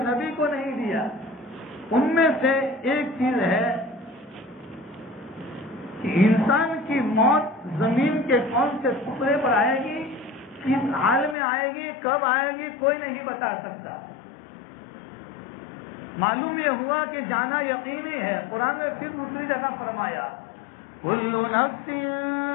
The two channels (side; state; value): right; drops out; at 11.4 s